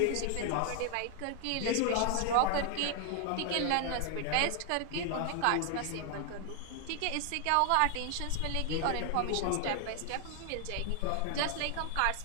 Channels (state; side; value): different; both; correlation 0.00